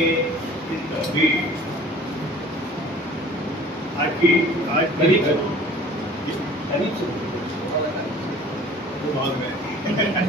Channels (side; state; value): both; normal; correlation 0.47